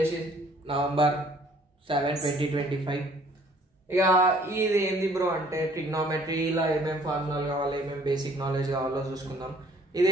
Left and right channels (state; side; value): normal; both; correlation 0.58